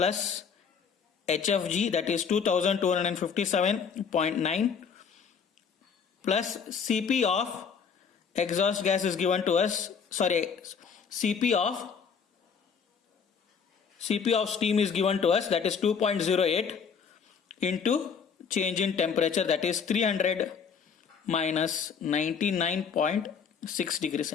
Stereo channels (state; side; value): quieter; right; 6.4 dB